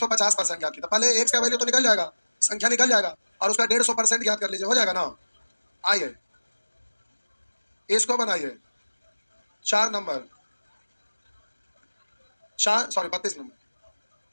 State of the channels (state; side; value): inverted; both; correlation -1.00